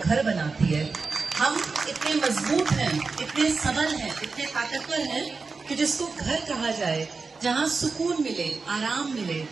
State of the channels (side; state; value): left; quieter; 4.4 dB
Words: बनाती है। हम इतने मजबूत हैं, इतने सबल हैं, इतने ताकतवर हैं कि जिसको घर कहा जाए, जहाँ सुकून मिले, आराम मिले,